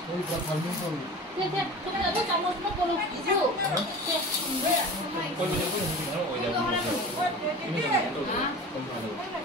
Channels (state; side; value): normal; both; correlation 0.36